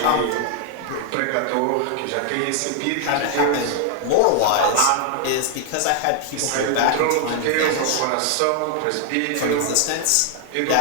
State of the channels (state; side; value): different; both; correlation 0.00